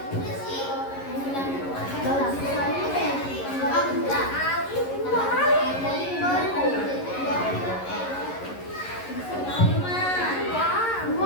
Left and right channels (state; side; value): late; right; 11 ms